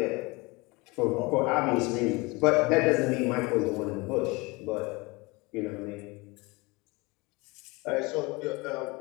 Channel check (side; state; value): right; quieter; 25.1 dB